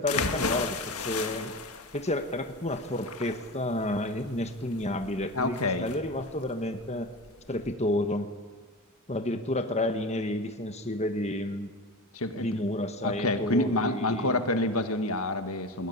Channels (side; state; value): both; normal; correlation 0.27